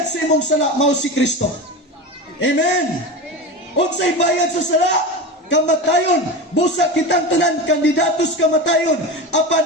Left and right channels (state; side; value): normal; both; correlation 0.25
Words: sa imong sala mao si Kristo. Amen. Unsay bayad sa sala? Kamatayon. Busa kitang tanan kandidatos kamatayon. Apan